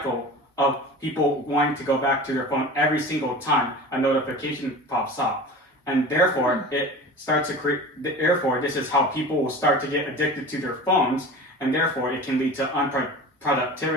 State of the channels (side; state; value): both; normal; correlation 0.36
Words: of people wanting to go back to their phone every single time a notification pops up. And therefore, it starts to create, therefore, this is how people will start to get addicted to their phones, and therefore it can lead to